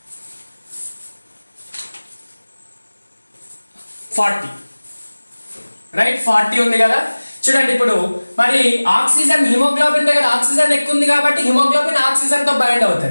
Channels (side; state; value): both; inverted; correlation -1.00